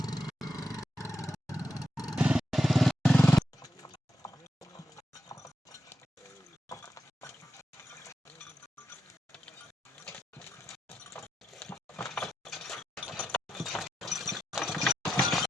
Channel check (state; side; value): normal; both; correlation 0.86